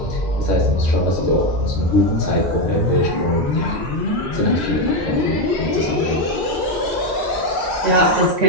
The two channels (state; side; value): normal; both; correlation 0.09